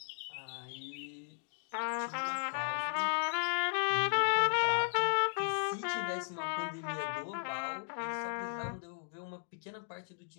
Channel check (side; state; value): right; silent; digital silence